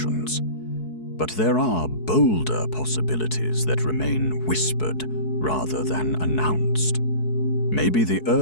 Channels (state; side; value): late; right; 4.7 ms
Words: But there are bolder possibilities that remain whispered rather than announced. Maybe the